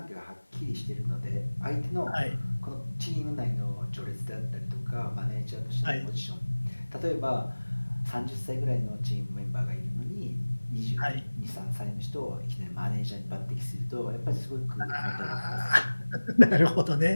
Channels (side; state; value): both; inverted; correlation -1.00